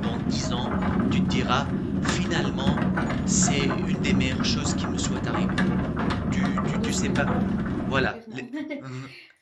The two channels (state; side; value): identical; both; correlation 1.00